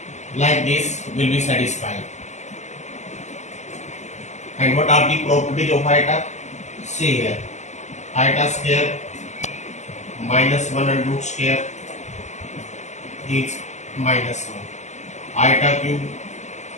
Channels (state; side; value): late; right; 0.33 ms